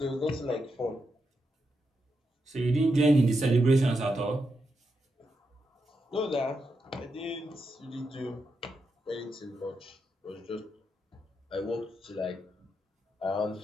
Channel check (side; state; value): both; normal; correlation 0.84